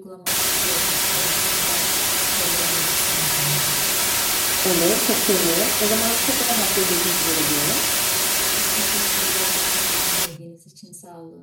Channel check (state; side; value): identical; both; correlation 1.00